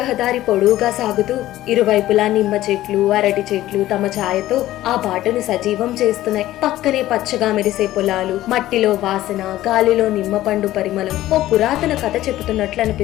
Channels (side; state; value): right; quieter; 14.8 dB